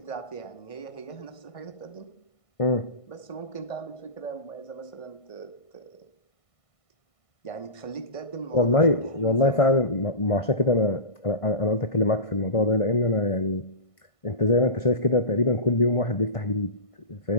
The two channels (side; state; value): right; late; 1.5 ms